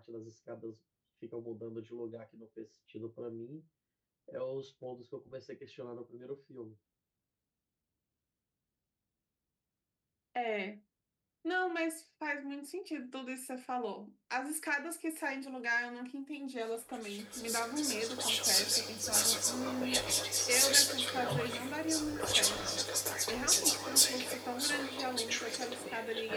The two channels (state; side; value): identical; both; correlation 1.00